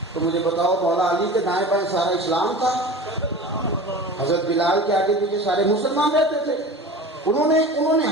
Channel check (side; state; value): both; normal; correlation 0.35